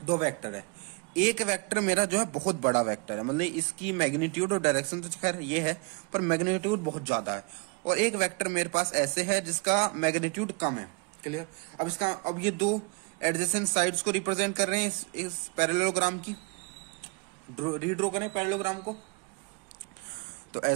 2 वेक्टर है, एक वेक्टर मेरा जो है बहुत बड़ा वेक्टर है, मतलब इसकी मैग्नीट्यूड और डायरेक्शन तो खैर ये है, पर मैग्नीट्यूड बहुत ज्यादा है। और एक वेक्टर मेरे पास ऐसे है जिसका मैग्नीट्यूड कम है, क्लियर। अब ये 2 एडजेसेंट साइड्स को रिप्रेजेंट कर रहे हैं इस पैरेललोग्राम की। रीड्रॉ करें पैरेललोग्राम को, तो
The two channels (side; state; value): left; quieter; 30.4 dB